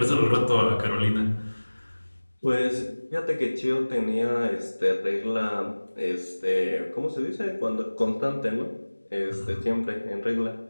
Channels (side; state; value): both; inverted; correlation -1.00